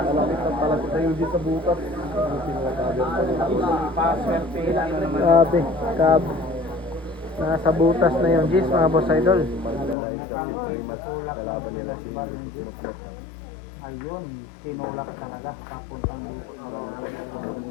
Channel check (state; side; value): drops out; right; at 10.0 s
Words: Palapit na yung sa butas. Paswerte lang naman. Grabe, cab. Nasa butas na yung G's, mga boss idol. Kalaban nila si Ayun, tinulak talaga. Papuntang